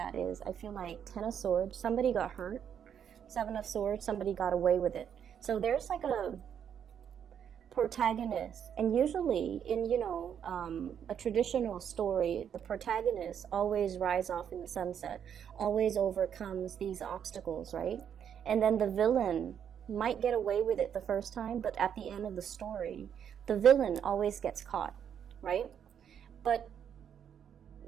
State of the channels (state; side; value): quieter; left; 8.5 dB